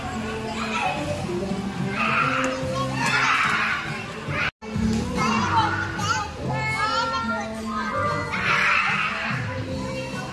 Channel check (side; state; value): both; identical; correlation 1.00